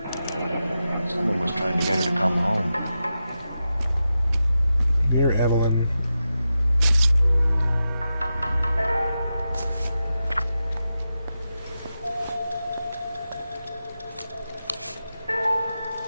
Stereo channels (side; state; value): both; inverted; correlation -0.90